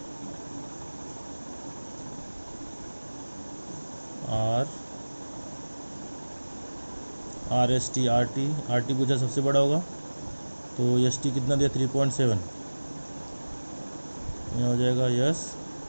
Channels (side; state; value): both; inverted; correlation -1.00